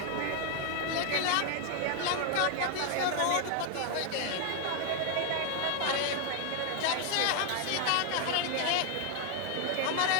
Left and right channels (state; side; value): different; both; correlation 0.00